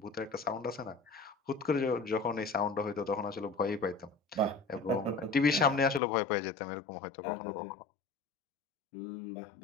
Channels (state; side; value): drops out; right; at 6.0 s